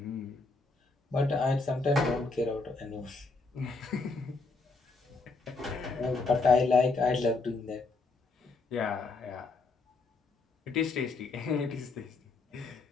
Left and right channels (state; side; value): quieter; right; 3.8 dB